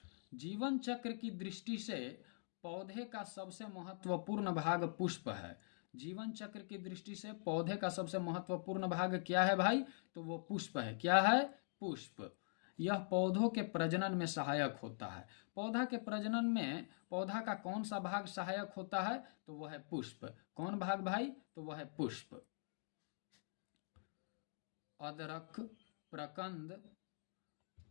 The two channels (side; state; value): right; silent; digital silence